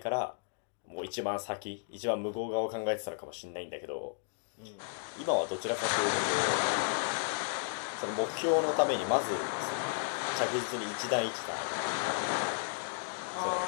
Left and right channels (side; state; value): right; silent; digital silence